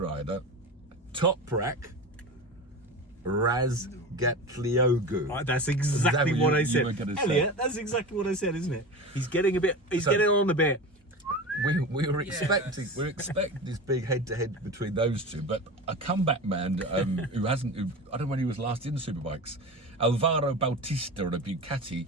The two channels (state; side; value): normal; both; correlation 0.29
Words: Toprak Razgatlioglu. That's exactly what I said. Elliot, that's exactly what I said, isn't it? He's getting on a bit. We were expecting this big head-to-head between those two, but a comeback man I don't know when he was last in Superbikes, Alvaro Bautista on a Ducati,